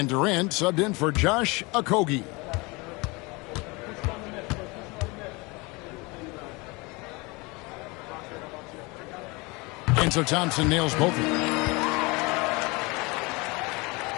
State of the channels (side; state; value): right; quieter; 26.0 dB